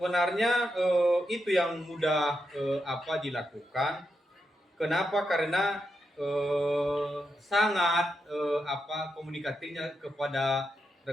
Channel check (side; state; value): both; normal; correlation 0.85